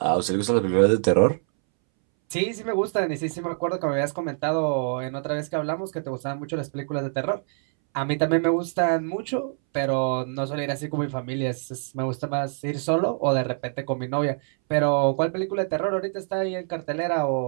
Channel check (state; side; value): silent; left; 61 dB below the other